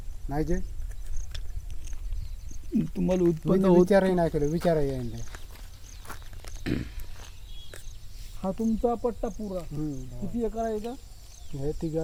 नाही जे तुम्हाला उत्पन्न म्हणजे होत. विचारही नाही केलं, विचारही येईल नाही. हा तुमचा पट्टा पुरा किती एकर आहे का? हे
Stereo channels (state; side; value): identical; both; correlation 1.00